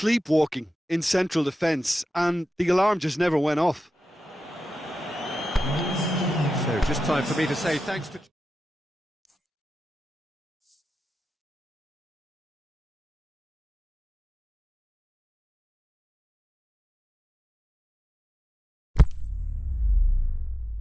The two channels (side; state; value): both; normal; correlation 0.92